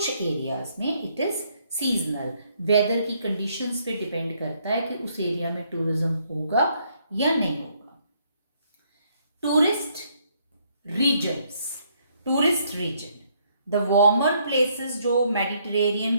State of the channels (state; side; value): inverted; both; correlation -0.70